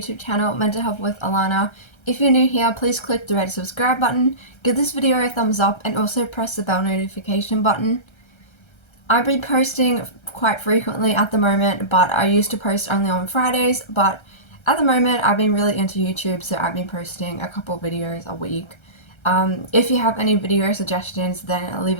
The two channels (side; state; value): right; late; 1.3 ms